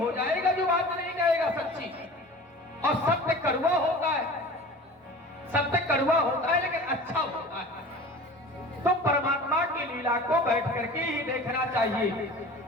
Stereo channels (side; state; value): both; normal; correlation 0.39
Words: जाएगा जो बात नहीं कहेगा सच्ची। और सत्य कड़वा होता है, सत्य कड़वा होता है लेकिन अच्छा होता है। तो परमात्मा की लीला को बैठ करके ही देखना चाहिए।